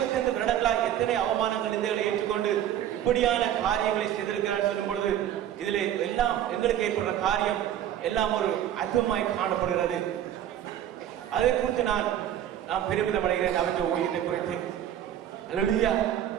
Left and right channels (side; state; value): left; quieter; 11.0 dB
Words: வருடங்களாய் எத்தனை அவமானங்கள், நிந்தைகளை ஏற்றுக்கொண்டு இப்படியான காரியங்களை செய்திருக்கிறார் சொல்லும் பொழுது இதில் எல்லாம் எங்களுக்கு ஏற்படுற காரியம் எல்லாம் ஒரு அற்புதமாய் காணப்படுகிறது. அதை குறித்து நான் பெருமிதம் அடைகிறேன் அவற்றை ஊழியத்தை குறித்து. அல்லேலூயா,